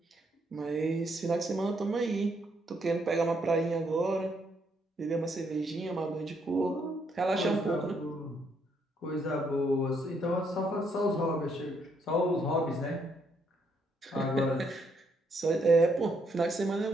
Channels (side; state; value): both; normal; correlation 0.73